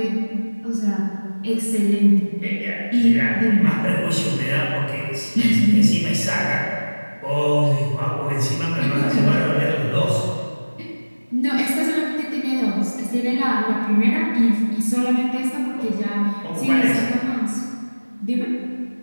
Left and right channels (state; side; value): inverted; both; correlation -1.00